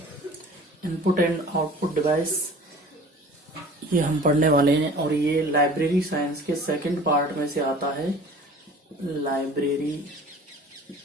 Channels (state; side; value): normal; both; correlation 0.45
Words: Input and output device ये हम पढ़ने वाले हैं और ये लाइब्रेरी साइंस के सेकंड पार्ट में से आता है। लाइब्रेरी